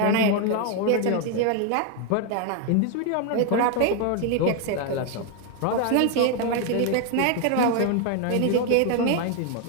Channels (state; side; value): different; both; correlation 0.01